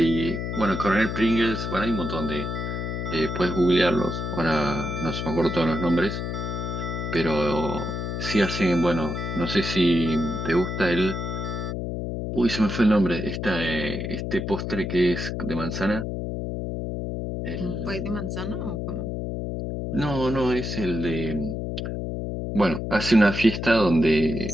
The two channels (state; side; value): noise; left; hum, 4 dB below the sound